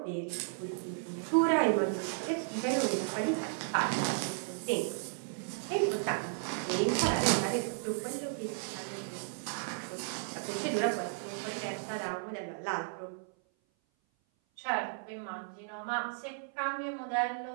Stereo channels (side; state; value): left; silent; 55 dB below the other